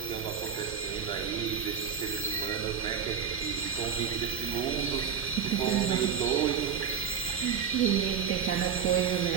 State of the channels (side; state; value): left; quieter; 7.5 dB